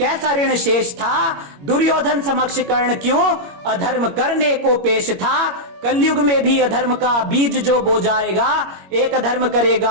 ऋण शेष था। दुर्योधन समक्ष कर्ण क्यों अधर्म करने को पेश था। कलयुग में भी अधर्म का बीज जो बो जाएगा, एक अधर्म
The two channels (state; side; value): late; left; 21 ms